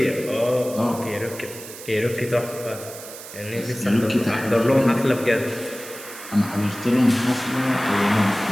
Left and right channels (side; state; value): right; noise; hiss, 14 dB below the sound